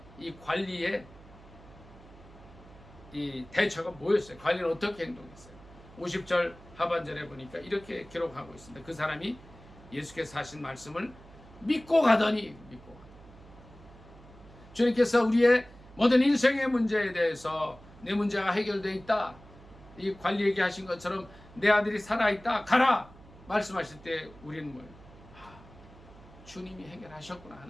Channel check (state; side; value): noise; right; hum, 21 dB below the sound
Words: 이 관리의 이 대처가 뭐였어요? 관리는 어떻게 행동했어요? 50절 하반절에 보니까 이렇게 기록하고 있습니다. 그 사람이 예수께서 하신 말씀을 믿고 가더니 주님께서 우리의 모든 인생의 문제에 대해서 내 문제가 해결되어 있다. 이 관리에게 하신 것처럼 내 아들이 살아있다. 가라! 말씀하실 때 우리는 뭐예요? 주님이 해결하셨구나